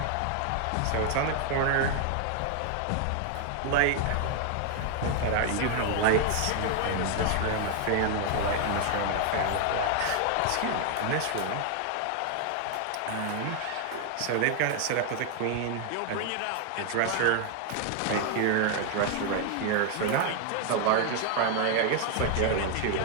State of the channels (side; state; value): both; different; correlation 0.00